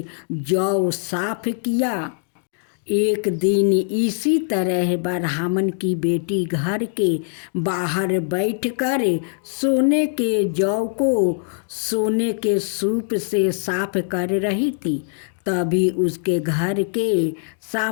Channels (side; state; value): right; silent; digital silence